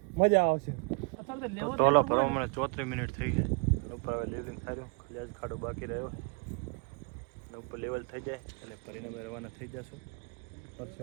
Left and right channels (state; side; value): quieter; left; 34.4 dB